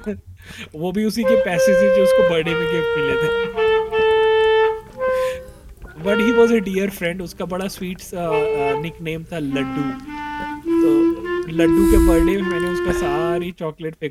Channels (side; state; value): both; identical; correlation 1.00